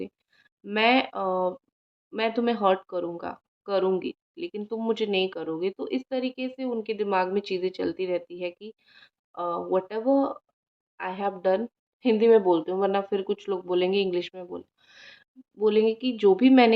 मैं मैं तुम्हें हर्ट करूँगी, लेकिन तुम मुझे नहीं करोगे। तो इस तरीके से उनके दिमाग में चीज़ें चलती रहती है कि whatever I have done, Hindi में बोलती हूँ वरना फिर कुछ लोग बोलेंगे इंग्लिश में बोलेंगे कि जो भी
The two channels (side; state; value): both; identical; correlation 1.00